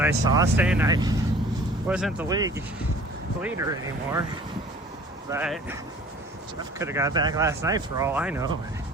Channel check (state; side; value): normal; both; correlation 0.49